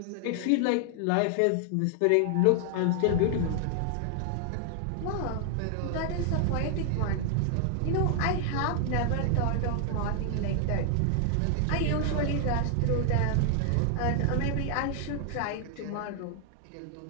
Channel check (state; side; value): different; both; correlation 0.00